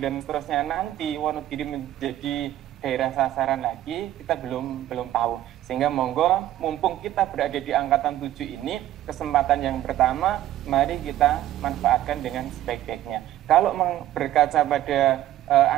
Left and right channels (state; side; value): quieter; left; 13.3 dB